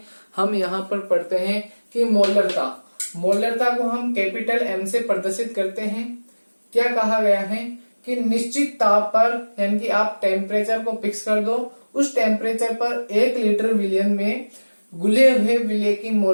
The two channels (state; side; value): inverted; both; correlation -1.00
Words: हम यहाँ पर पढ़ते हैं कि मोलरता को हम कैपिटल M से प्रदर्शित करते हैं। क्या कहा गया है कि निश्चित ताप पर, यानी कि आप टेम्परेचर को फिक्स कर दो, उस टेम्परेचर पर 1 लीटर विलयन में घुले हुए विलय की